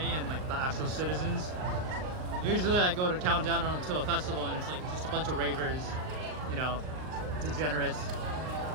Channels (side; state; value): left; late; 39 ms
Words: and like the actual citizens. Usually I go to countdown to a festival and it's like just a bunch of ravers, you know, degenerates,